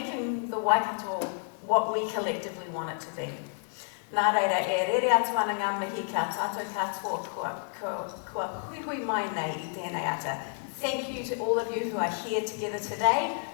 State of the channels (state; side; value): silent; right; 58 dB below the other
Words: the Waikato what we collectively want it to be. Nā reira, e rere atu ana ngā mihi ka tātou katoa kua hui mai nei I tēnei ata. Thank you to all of you who are here together today,